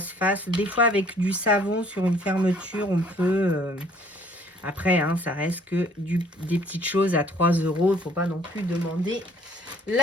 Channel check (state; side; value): normal; both; correlation 0.58